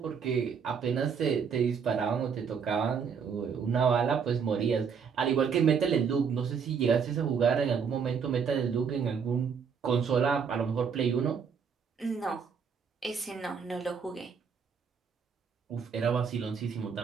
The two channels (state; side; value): quieter; left; 6.4 dB